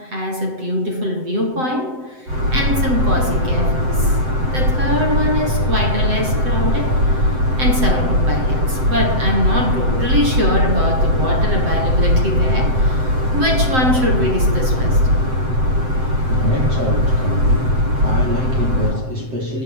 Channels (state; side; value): late; left; 7.8 ms